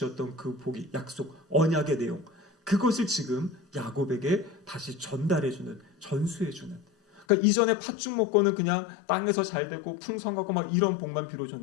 그 복이 약속, 언약의 내용, 그것을 지금 야곱에게 다시 전달해주는, 전수해주는. 그러니까 이전에 팥죽 먹고는 그냥 땅에서 잘 되고 풍성하고 막 이런 복만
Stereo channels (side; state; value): right; drops out; at 7.2 s